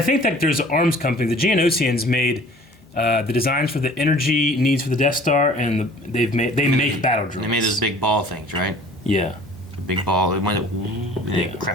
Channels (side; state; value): both; normal; correlation 0.49